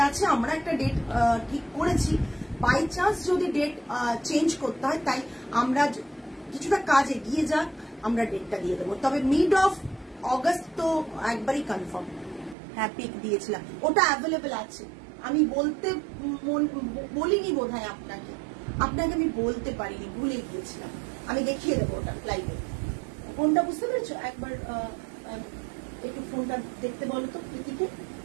আছে। আমরা একটা ডেট ঠিক করেছি, বাই চান্স যদি ডেট চেঞ্জ করতে হয়, তাই আমরা কিছুটা কাজ এগিয়ে যাক আমরা ডেটটা দিয়ে দেবো, তবে মিড অফ অগস্ট তো একবারই কনফার্ম। হ্যাঁ পিক দিয়েছিলাম, ওটা অ্যাভেলেবেল আছে, আমি বলিনি বোধহয় আপনাকে আমি বলতে পারিনি, ভুলে গিয়েছিলাম, আমি দেখিয়ে দেবো ওটা লাইভে। কোনটা বুঝতে পেরেছো? একবার একটু ফোনটা দেখতে বলো তো প্রীতিকে,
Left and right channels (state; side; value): drops out; left; at 12.6 s